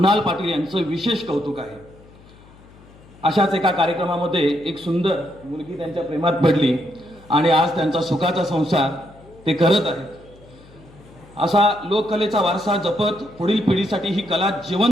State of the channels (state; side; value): noise; left; hum, 24 dB below the sound